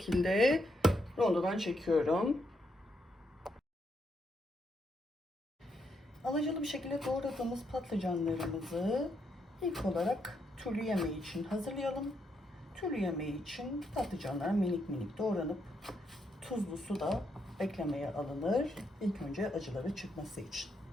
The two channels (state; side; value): normal; both; correlation 0.79